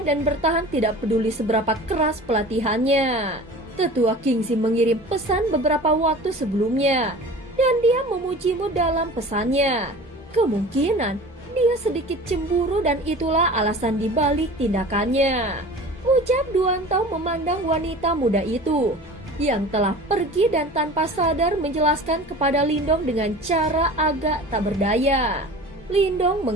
dan bertahan tidak peduli seberapa keras pelatihannya. Tetua Kingzi mengirim pesan beberapa waktu sebelumnya, dan dia memujimu dalam pesannya. Kemungkinan dia sedikit cemburu dan itulah alasan dibalik tindakannya. Ucap Duan Tao memandang wanita muda itu yang telah pergi dan tanpa sadar menjelaskan kepada Lindong dengan cara agak tak berdaya. Lindong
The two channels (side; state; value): both; normal; correlation 0.39